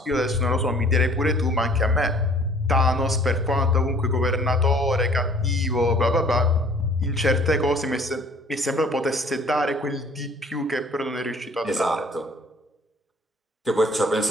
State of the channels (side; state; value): both; normal; correlation 0.54